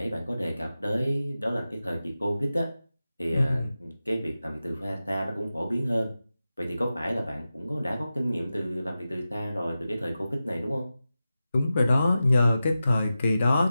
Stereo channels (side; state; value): both; inverted; correlation -0.93